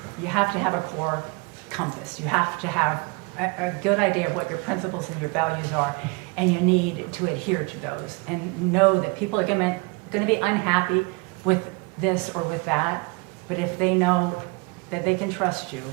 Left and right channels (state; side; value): quieter; left; 29.5 dB